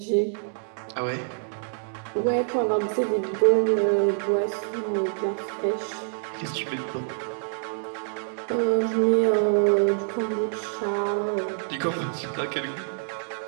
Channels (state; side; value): silent; left; digital silence